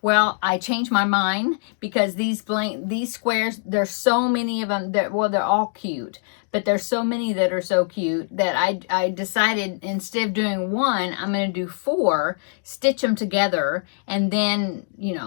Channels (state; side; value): silent; right; digital silence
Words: Well, I changed my mind, because these squares, there's so many of them that, they're all cute, but there's so many that are so cute that I decided, instead of doing one, I'm going to do 4, stitch them together, and then,